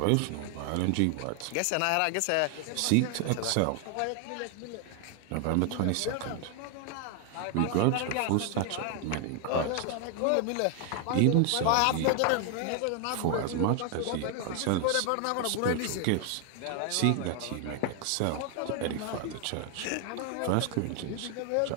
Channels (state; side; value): different; both; correlation 0.00